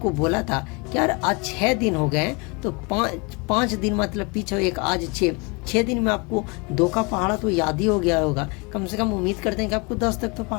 बोला था कि यार आज 6 दिन हो गए, तो 5 दिन मतलब पीछे एक, आज 6 दिन में आपको 2 का पहाड़ा तो याद ही हो गया होगा। कम से कम उम्मीद करते हैं कि आपको 10 तक तो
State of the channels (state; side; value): quieter; right; 30.0 dB